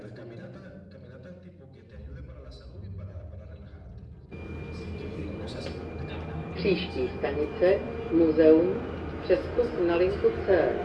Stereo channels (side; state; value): both; identical; correlation 1.00